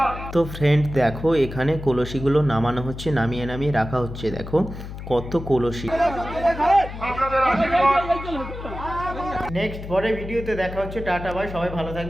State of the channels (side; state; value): left; noise; hum, 10 dB below the sound